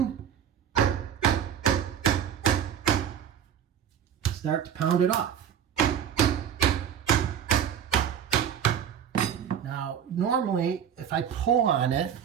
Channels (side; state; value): left; quieter; 9.0 dB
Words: start to pound it off. Now, normally, if I pull on it